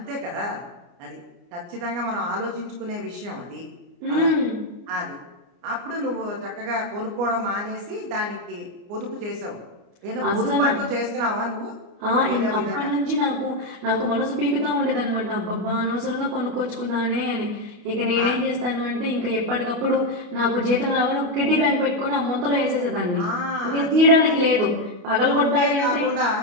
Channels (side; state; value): left; late; 29 ms